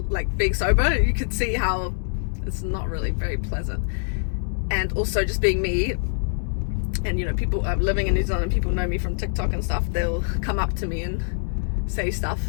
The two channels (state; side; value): silent; right; digital silence